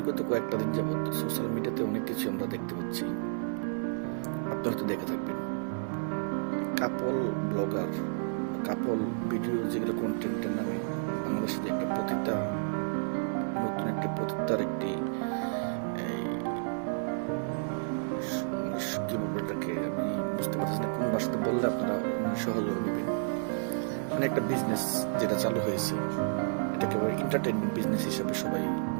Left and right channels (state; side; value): silent; left; 57 dB below the other